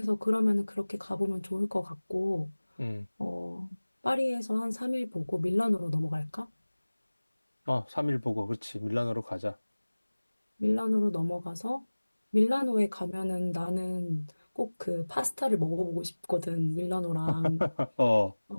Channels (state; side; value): inverted; both; correlation -1.00